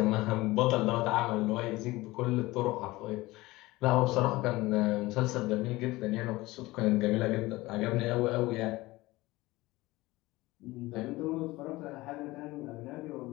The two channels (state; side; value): quieter; right; 19.8 dB